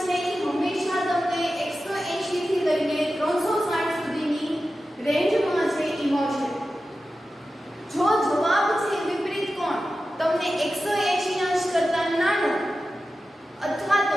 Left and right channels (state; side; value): normal; both; correlation 0.93